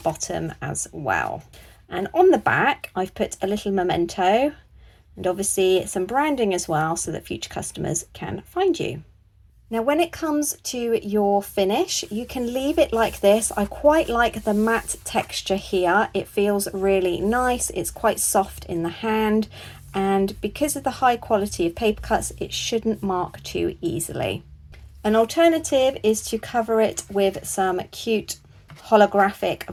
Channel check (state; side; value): identical; both; correlation 1.00